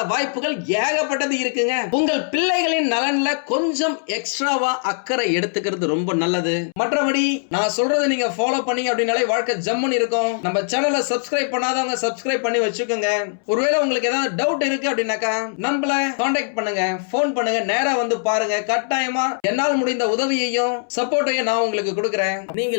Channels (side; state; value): right; silent; 65 dB below the other